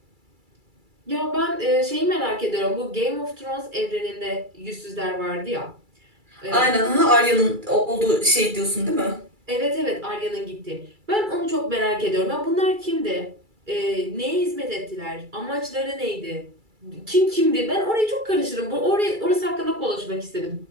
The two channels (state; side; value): late; left; 2.3 ms